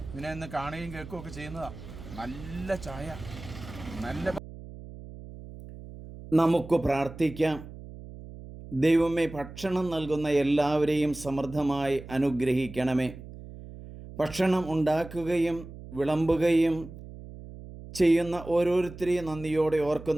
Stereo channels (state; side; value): noise; right; hum, 14 dB below the sound